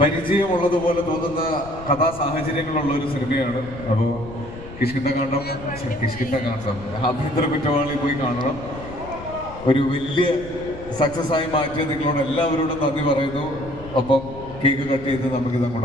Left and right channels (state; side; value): noise; left; rumble, 15 dB below the sound